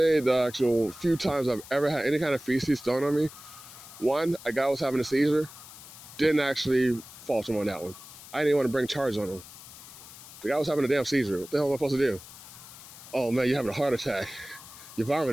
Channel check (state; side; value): noise; left; hiss, 17 dB below the sound